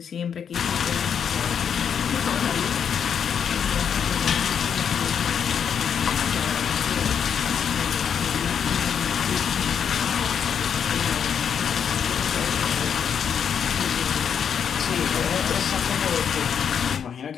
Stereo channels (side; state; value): right; quieter; 7.7 dB